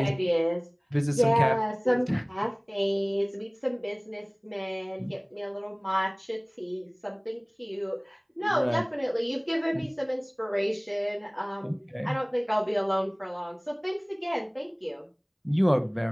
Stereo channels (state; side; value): identical; both; correlation 1.00